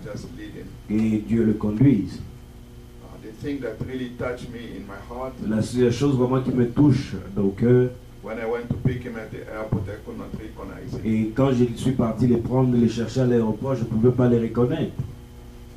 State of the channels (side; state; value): both; identical; correlation 1.00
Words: just lead him. et Dieu le conduise. The thing that really touched me in my heart, La seule chose vraiment qui me touche au cœur, when I went to pick him at the airport, I could not recognize him. et quand je suis parti les prendre, les chercher à l'aéroport, je ne pouvais pas les reconnaître.